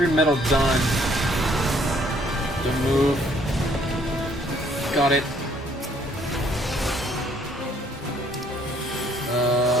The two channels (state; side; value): normal; both; correlation 0.64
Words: metal done. Don't move. Got it.